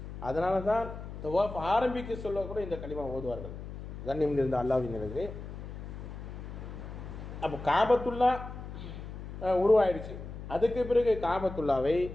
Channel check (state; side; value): noise; left; hum, 10 dB below the sound